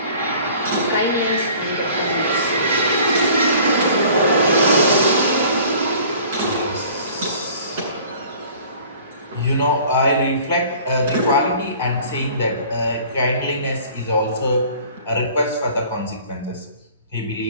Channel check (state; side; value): inverted; both; correlation -0.49